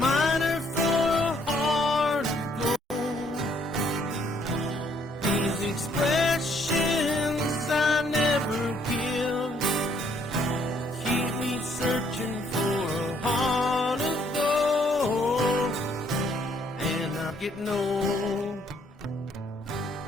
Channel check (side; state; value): both; normal; correlation 0.67